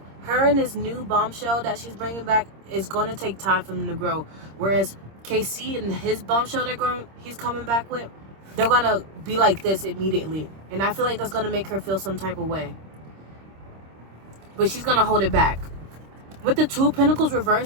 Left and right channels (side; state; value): left; late; 26 ms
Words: Her and this new bombshell that she's bringing back is going to take time for them to grow. Whereas KC and his bombshell he's coming back with, they're going to be like this immediately. And I feel like that's going to make her feel some type of way. But she's going to hold it back. with the Two of Pentacles